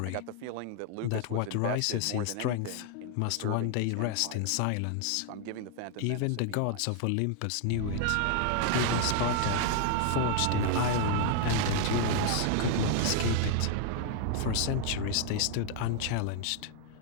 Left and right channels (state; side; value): different; both; correlation 0.00